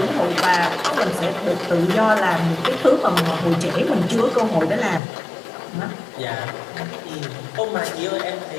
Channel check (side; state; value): right; drops out; at 5.0 s